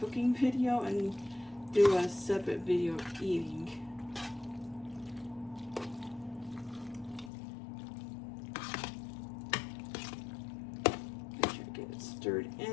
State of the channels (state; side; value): drops out; right; at 7.3 s